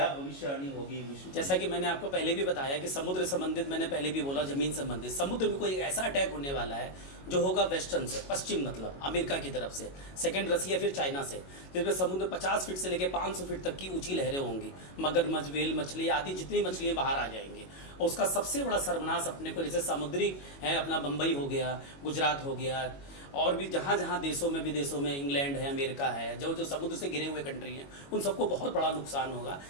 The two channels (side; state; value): right; late; 22 ms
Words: भविष्यवाणी होगी विश्व? जैसा कि मैंने आपको पहले भी बताया कि समुद्र संबंधित, मैंने पहले भी बोला, जमीन संबंधित, समुद्र में कोई ऐसा अटैक होने वाला है जो होगा वेस्टर्न से, पश्चिम मतलब अमेरिका की तरफ से, सेकंड रसिया, फिर चाइना से, जिसमें समुद्र 50 फीट से लेकर 500 फीट तक की ऊंची लहरें होंगी। मगरमच्छ, वेल मछली आदि जितनी मछलियाँ बाहर आ जाएंगी। और उसका सबसे बड़ा सर्वनाश अपने को, जैसे समुद्री है अपना बम्बई हो गया, गुजरात हो गया, और भी जहाँ जहाँ देशों में, विदेशों में, इंग्लैंड है, अमेरिका है, जो जो समुद्र से घिरे हुए कंट्री हैं, उन सबको बहुत बड़ा नुकसान होगा।